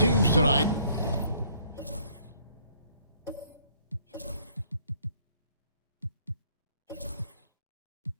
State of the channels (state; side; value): inverted; both; correlation -0.62